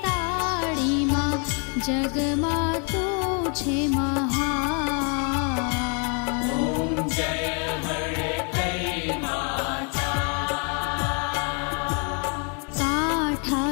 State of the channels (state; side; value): quieter; right; 38.6 dB